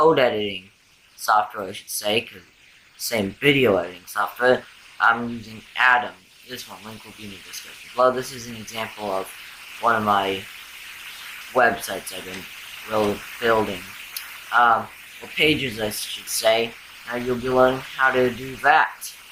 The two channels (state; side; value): identical; both; correlation 1.00